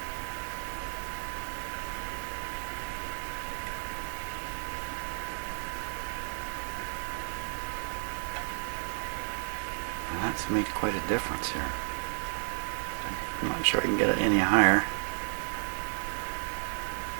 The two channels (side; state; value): left; silent; 56 dB below the other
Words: That's made quite a difference here. I'm not sure I can get it any higher.